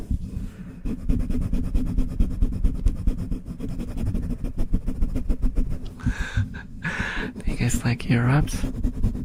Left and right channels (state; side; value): identical; both; correlation 1.00